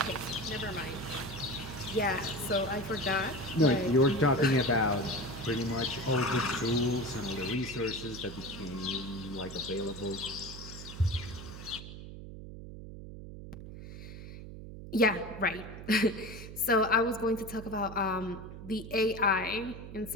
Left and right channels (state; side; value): noise; right; hum, 12 dB below the sound